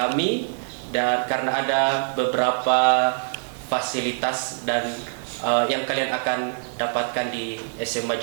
dan karena ada beberapa fasilitas dan yang kalian akan dapatkan di SMA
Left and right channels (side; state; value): left; silent; 60 dB below the other